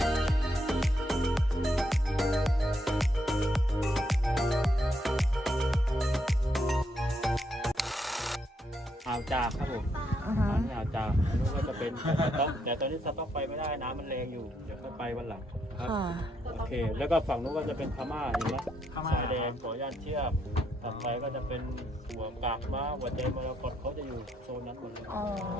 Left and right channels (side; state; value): both; normal; correlation 0.77